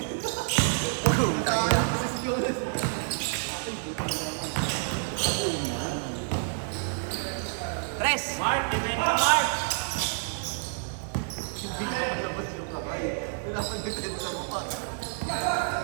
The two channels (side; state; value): left; silent; digital silence